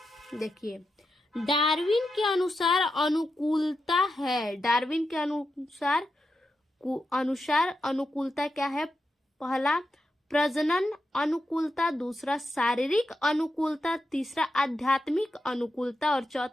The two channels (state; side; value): normal; both; correlation 0.87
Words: देखिए, डार्विन के अनुसार अनुकूलता है। डार्विन के अनुसार अनुकूलता क्या है, पहला प्रजनन अनुकूलता, दूसरा शारीरिक अनुकूलता, तीसरा आध्यात्मिक अनुकूलता और